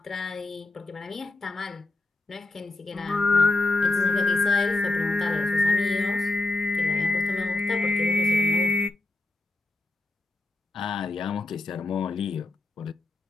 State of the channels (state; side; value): quieter; right; 3.1 dB